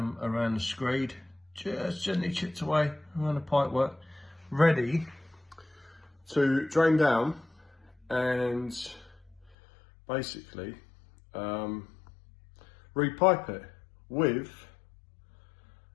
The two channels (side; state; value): right; drops out; at 9.6 s